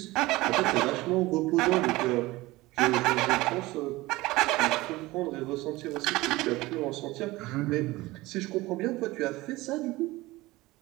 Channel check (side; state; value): left; quieter; 19.7 dB